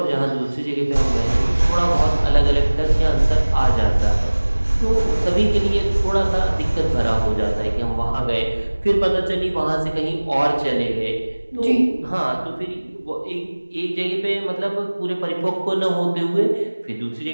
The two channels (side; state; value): both; inverted; correlation -1.00